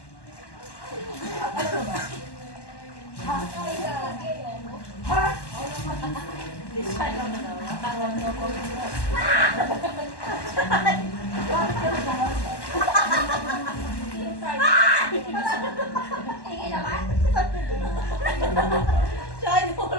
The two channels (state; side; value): late; right; 1.1 ms